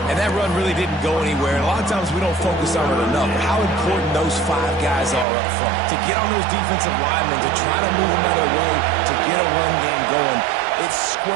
And that run really didn't go anywhere. And a lot of times we don't focus on it enough. How important those 5 guys are up front. To get on those defensive linemen, to try to move them out of the way, to get a run game going, it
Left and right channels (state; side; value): drops out; left; at 5.2 s